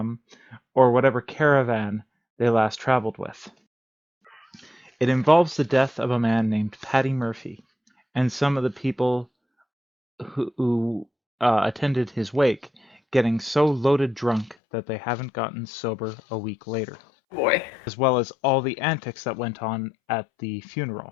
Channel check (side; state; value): right; drops out; at 14.6 s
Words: or whatever caravan they last traveled with. It involves the death of a man named Paddy Murphy, and some of the people who attended his wake getting so loaded drunk that they haven't gotten sober a week later, Boy. as well as all the antics that went on at the